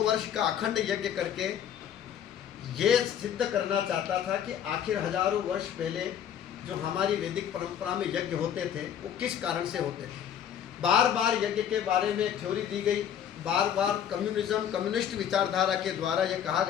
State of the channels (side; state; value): right; quieter; 9.2 dB